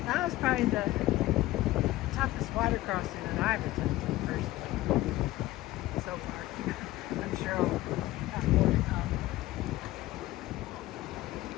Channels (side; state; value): right; quieter; 16.6 dB